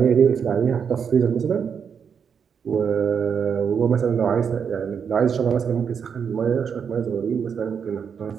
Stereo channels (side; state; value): left; quieter; 6.9 dB